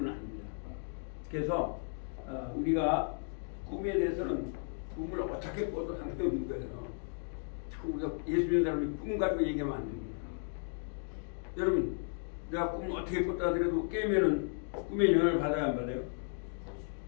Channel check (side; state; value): right; silent; 55 dB below the other